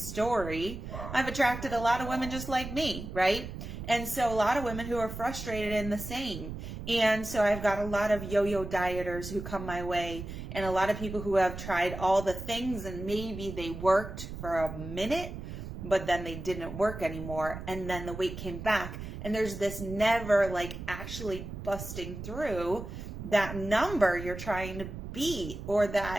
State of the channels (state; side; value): noise; right; rumble, 9 dB below the sound